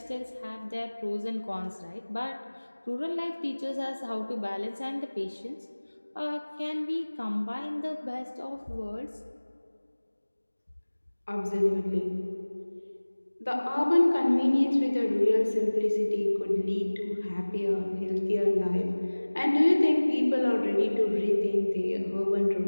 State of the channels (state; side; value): inverted; both; correlation -1.00